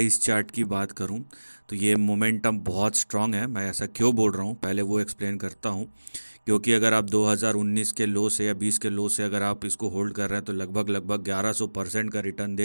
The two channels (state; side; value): inverted; both; correlation -1.00